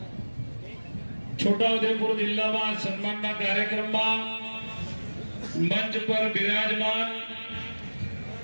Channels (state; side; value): inverted; both; correlation -1.00